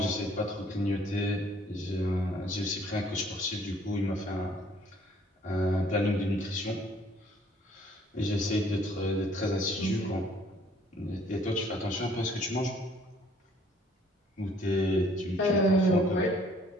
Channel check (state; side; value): normal; both; correlation 0.60